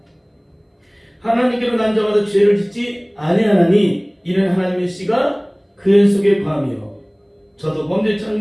하나님께로 난 자마다 죄를 짓지 아니하나니 이는 하나님의 씨가 그의 속에 거하며 저도 범죄치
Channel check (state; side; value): identical; both; correlation 1.00